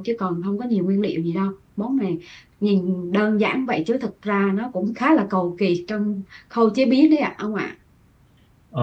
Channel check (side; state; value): both; identical; correlation 1.00